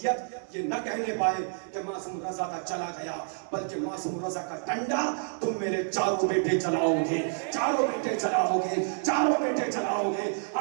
ये न कहने पाए कि मासूम रजा का चला गया, बल्कि मासूम रजा का डंडा तुम मेरे चारों बेटे चलाओगे, चारों बेटे चलाओगे, चारों बेटे चलाओगे।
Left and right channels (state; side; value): silent; left; digital silence